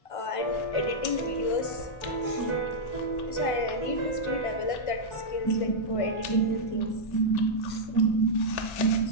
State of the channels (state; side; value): late; right; 1.5 ms